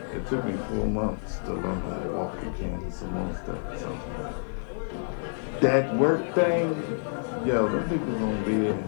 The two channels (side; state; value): right; silent; 59 dB below the other